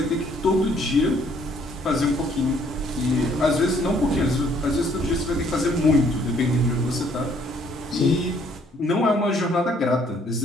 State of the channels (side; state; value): both; normal; correlation 0.64